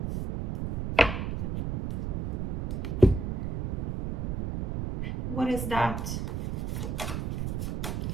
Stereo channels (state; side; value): noise; right; rumble, 1 dB below the sound